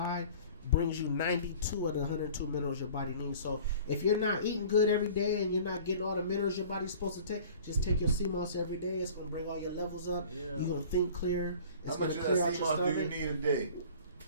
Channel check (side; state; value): both; inverted; correlation -0.46